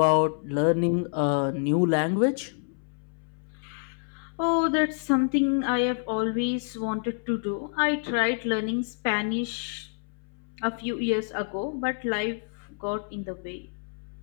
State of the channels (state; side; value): silent; right; 60 dB below the other